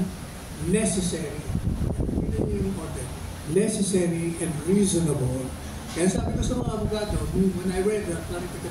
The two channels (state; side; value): identical; both; correlation 1.00